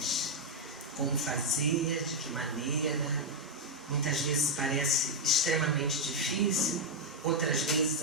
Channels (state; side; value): normal; both; correlation -0.01